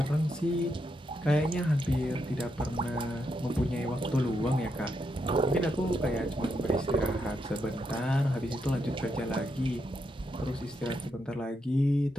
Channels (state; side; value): normal; both; correlation 0.81